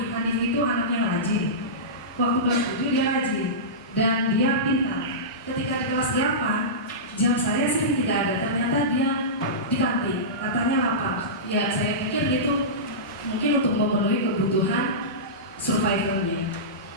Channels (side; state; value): both; normal; correlation -0.18